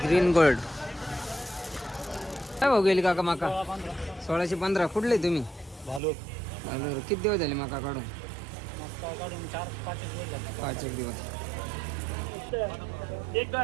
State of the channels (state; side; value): drops out; left; at 6.0 s